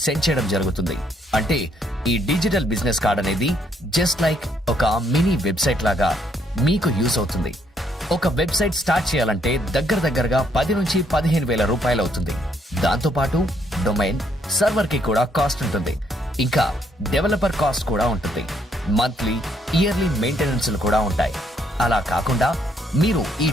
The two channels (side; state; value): both; normal; correlation 0.71